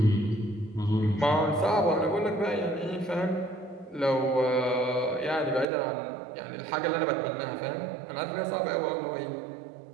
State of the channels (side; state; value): left; drops out; at 5.7 s